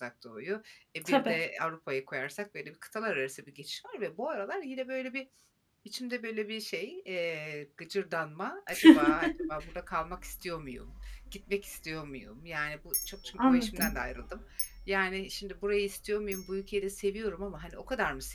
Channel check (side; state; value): both; identical; correlation 1.00